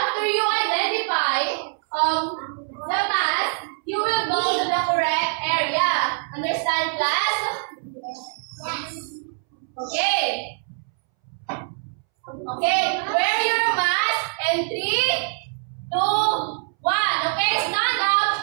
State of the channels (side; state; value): left; silent; 63 dB below the other